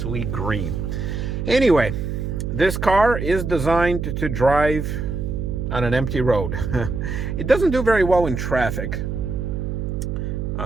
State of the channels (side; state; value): right; noise; hum, 3 dB below the sound